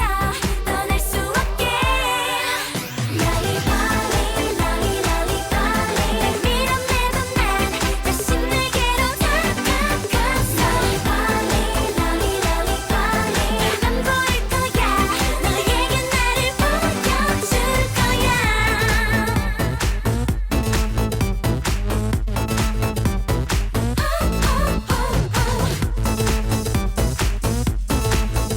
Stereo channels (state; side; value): identical; both; correlation 1.00